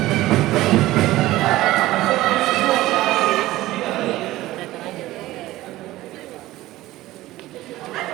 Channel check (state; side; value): quieter; left; 16.9 dB